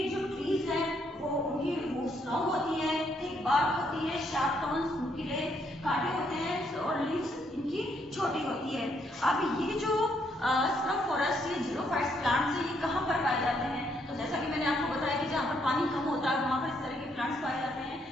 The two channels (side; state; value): both; normal; correlation 0.73